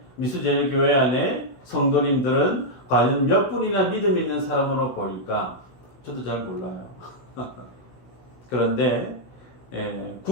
미수제일교회 안에 성도님들은 과연 몇 분이나 믿음 있는 사람으로 보일까? 저도 잘 몰라요. 그런데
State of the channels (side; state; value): right; late; 16 ms